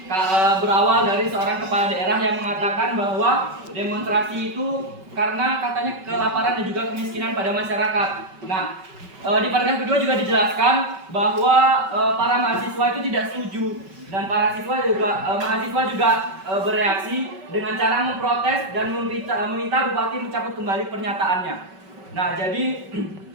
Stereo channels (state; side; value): late; left; 5.3 ms